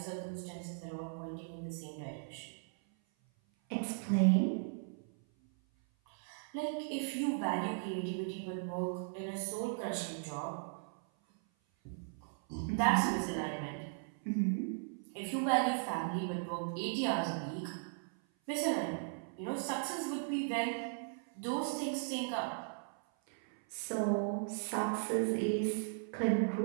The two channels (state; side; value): silent; left; 53 dB below the other